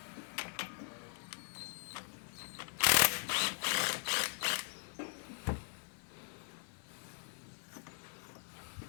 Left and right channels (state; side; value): silent; right; 51 dB below the other